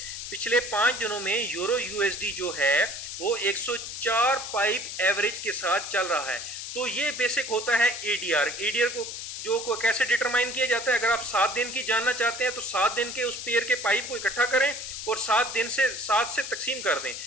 पिछले 5 दिनों में यूरो यूएसडी जो है वो 104 पाइप एवरेज के साथ चल रहा है। तो ये बेसिक होता है एडीआर। एडीआर को कैसे डिटरमाइन किया जाता है, अगर आप 7 दिन की जानना चाहते हैं तो 7 दिन के उस पेयर के पाइप को इकट्ठा करें और 7 से तकसीम कर दें,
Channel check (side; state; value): left; noise; hiss, 7 dB below the sound